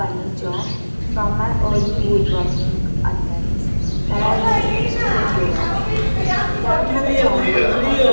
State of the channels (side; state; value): both; inverted; correlation -1.00